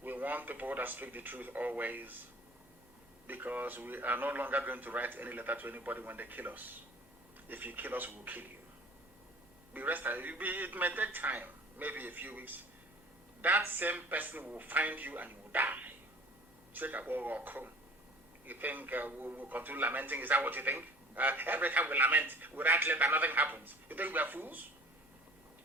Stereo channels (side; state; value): both; normal; correlation 0.46